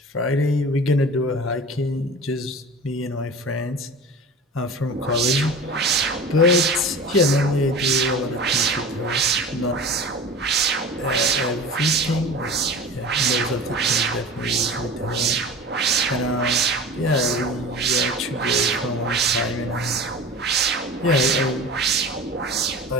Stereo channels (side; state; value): both; normal; correlation 0.35